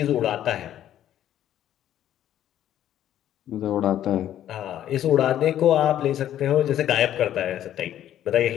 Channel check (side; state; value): right; quieter; 11.5 dB